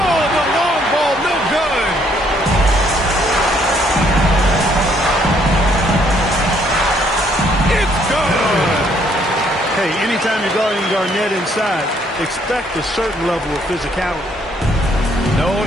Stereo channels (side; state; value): both; normal; correlation 0.67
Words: the long ball, no good. It's good. Hey, anytime you're guarding Garnett inside, expect a certain level of physicality. No